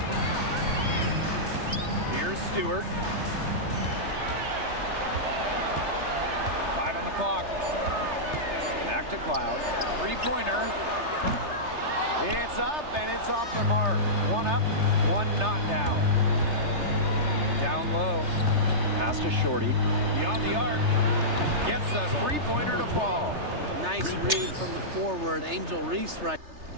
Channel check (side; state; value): left; late; 3.3 ms